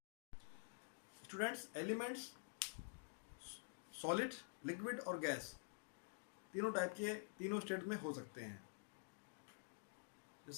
Students, elements solid, liquid और गैस तीनों टाइप के तीनों स्टेट में हो सकते हैं।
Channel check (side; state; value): right; silent; digital silence